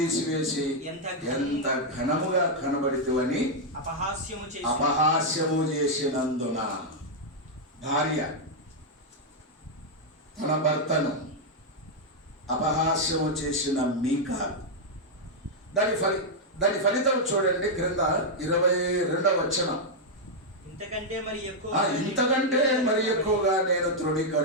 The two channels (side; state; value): both; normal; correlation -0.03